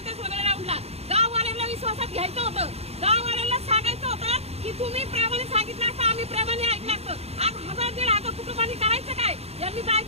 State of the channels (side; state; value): left; late; 0.30 ms